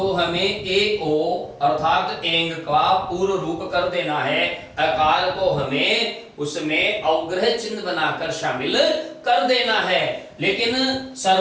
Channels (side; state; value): both; identical; correlation 1.00